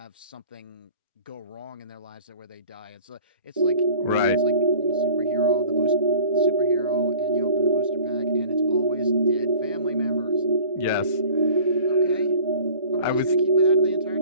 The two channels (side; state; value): both; inverted; correlation -0.46